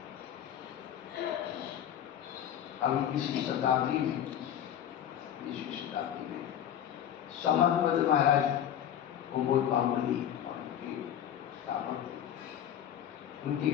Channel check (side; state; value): right; quieter; 10.2 dB